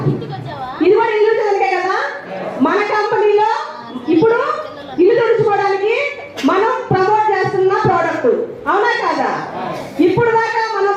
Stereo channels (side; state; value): both; identical; correlation 1.00